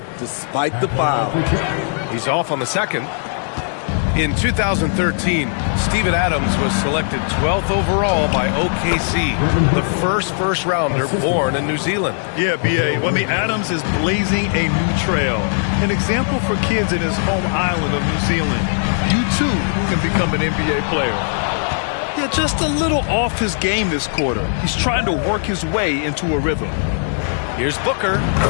despite the foul. He's off on the second. In 2013, Steven Adams was selected 12th overall by OKC, the first rounder born in New Zealand. Yeah, B.A. Well, I mean, Adams is blazing a new trail. An example for kids in his home island of New Zealand. You, too, can become an NBA player. Yeah, just a little off his game this quarter. He's trying to work his way into a rhythm. Here's Booker.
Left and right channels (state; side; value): silent; right; digital silence